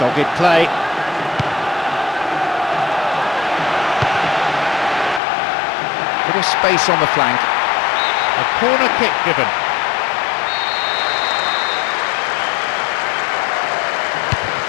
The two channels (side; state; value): right; drops out; at 5.2 s